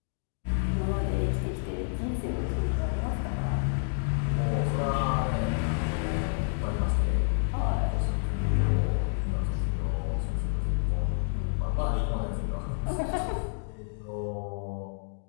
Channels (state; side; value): silent; right; digital silence